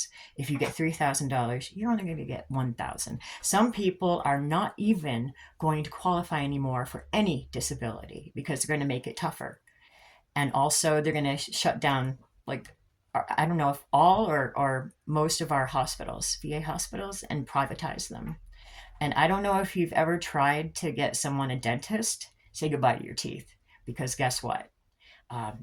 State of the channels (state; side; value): identical; both; correlation 1.00